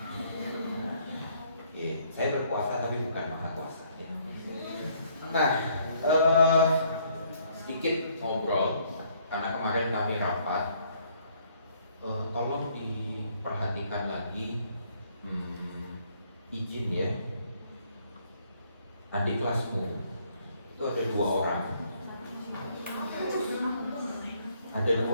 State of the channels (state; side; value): inverted; both; correlation -0.66